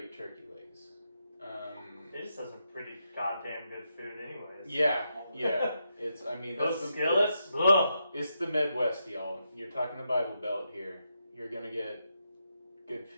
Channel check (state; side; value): inverted; both; correlation -0.84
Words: turkey legs. It just has some pretty goddamn good food anyways. Yeah. Those skillets? It's the Midwest, y'all. You're talking the Bible Belt here. You're gonna get good